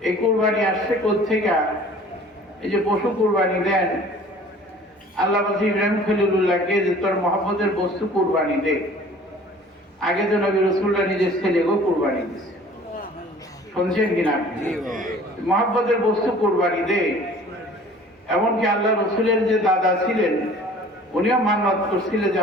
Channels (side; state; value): both; normal; correlation 0.49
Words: এই কুরবানি আসছে কোত্থেকে? এই যে পশু কুরবানি দেন, আল্লাহ বলছে ইব্রাহিম খলিলুল্লাহকে যে তোর মহব্বতের বস্তু কুরবানি দে। আগে তো নবী রাসূলুল্লাহ নিজের ছেলেকেও কুরবানি দিয়েছে, শুনছেন কিনা? মহব্বতের বস্তু কুরবানি দে। এমনকি আল্লাহ রাসূলের যে দাদা ছিলেন উনিও মান্নত করছিলেন যে